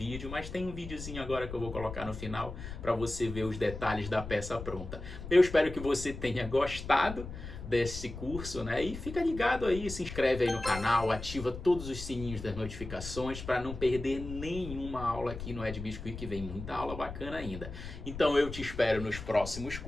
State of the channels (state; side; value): noise; left; rumble, 10 dB below the sound